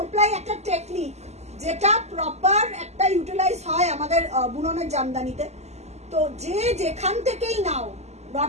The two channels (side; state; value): left; late; 0.32 ms